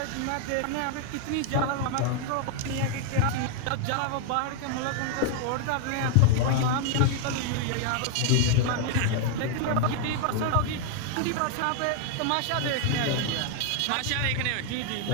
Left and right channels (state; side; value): different; both; correlation 0.00